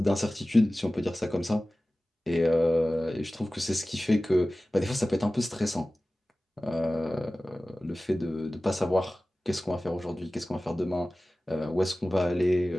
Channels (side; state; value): both; normal; correlation 0.97